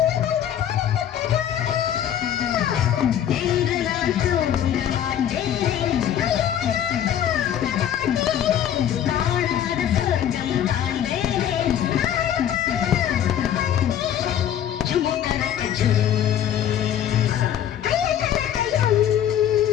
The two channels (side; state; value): right; quieter; 10.2 dB